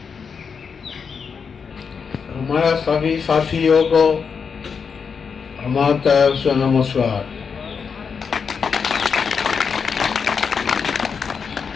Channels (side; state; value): right; quieter; 6.0 dB